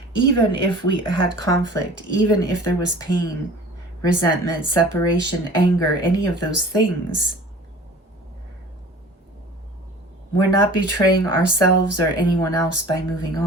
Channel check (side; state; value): both; normal; correlation 0.43